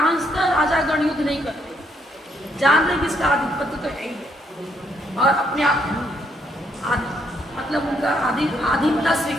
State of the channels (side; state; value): both; normal; correlation 0.73